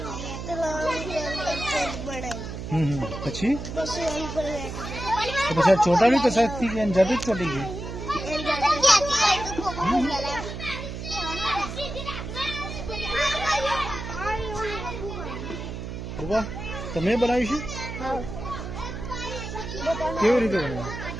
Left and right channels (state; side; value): noise; right; hum, 7 dB below the sound